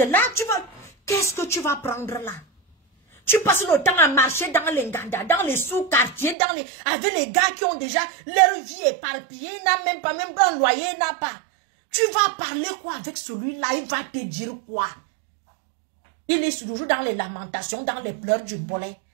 là, qu'est-ce que tu vas prendre là? Tu passes le temps à marcher dans les Nganda, dans les sous-quartiers, avec les gars qui ont déjà leur vie éparpillée, n'a même pas, même un loyer, n'a pas. Tu vas parler quoi avec celui-là? Il va te dire quoi? Il est toujours dans les lamentations, dans les pleurs du bolet.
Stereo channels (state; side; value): drops out; left; at 6.4 s